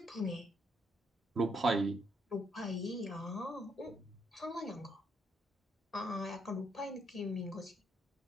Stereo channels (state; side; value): normal; both; correlation 0.74